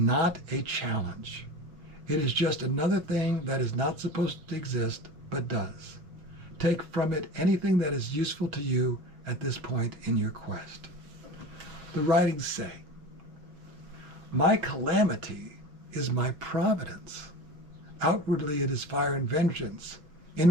a challenge. It is just another thing that is not supposed to exist, but does. Take from it anything that is useful to you at this point in your quest. The writings say, my calamity is my providence. Outwardly it is fire and vengeance.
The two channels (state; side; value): late; left; 6.3 ms